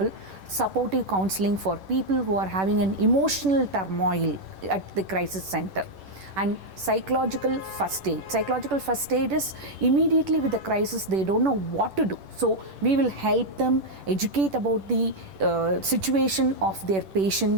supportive counseling for people who are having an emotional turmoil at the crisis center. And psychological first aid. Psychological first aid is immediately with the crisis, they don't know what to do. So we will help them educate about the situation of their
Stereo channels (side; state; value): left; late; 10 ms